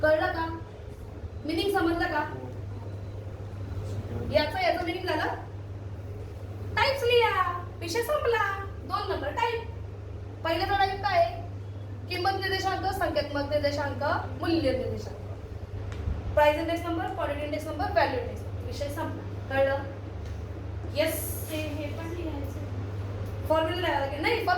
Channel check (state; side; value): identical; both; correlation 1.00